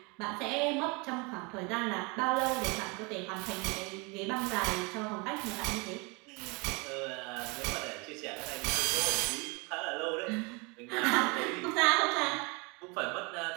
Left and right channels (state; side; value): quieter; left; 29.3 dB